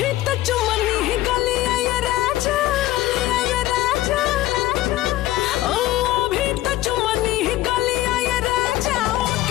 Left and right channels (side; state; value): right; quieter; 15.7 dB